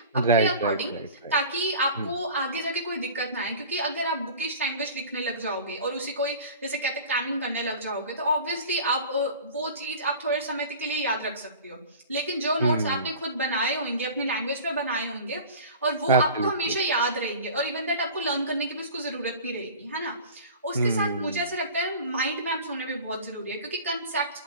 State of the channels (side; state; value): both; inverted; correlation -0.40